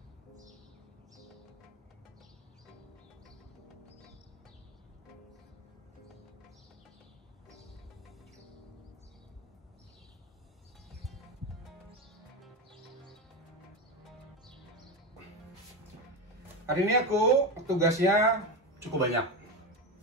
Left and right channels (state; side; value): normal; both; correlation 0.18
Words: Hari ini aku tugasnya cukup banyak.